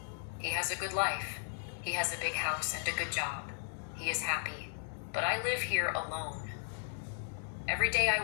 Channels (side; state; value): right; silent; digital silence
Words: He has a good life. He has a big house and a good job. He is happy, but I live here alone. Every day